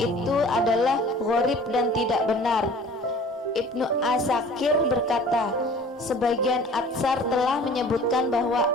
adalah gharib dan tidak benar. Ibnu Asakir berkata, sebagian Atsar telah menyebutkan bahwa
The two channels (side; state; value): both; normal; correlation 0.47